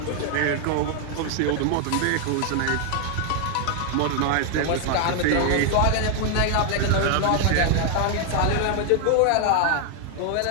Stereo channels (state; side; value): different; both; correlation 0.00